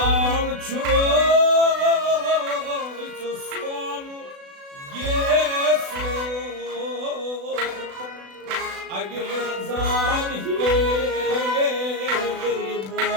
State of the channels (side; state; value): left; late; 36 ms